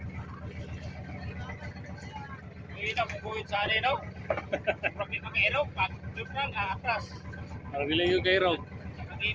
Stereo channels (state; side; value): identical; both; correlation 1.00